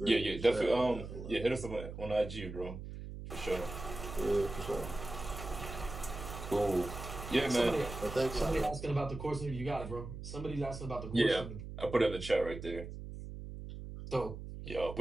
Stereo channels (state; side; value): noise; right; hum, 9 dB below the sound